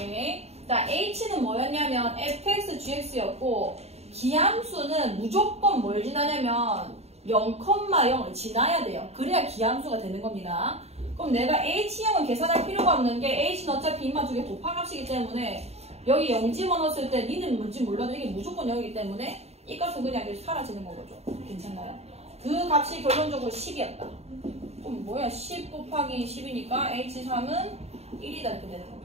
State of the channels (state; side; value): late; left; 0.30 ms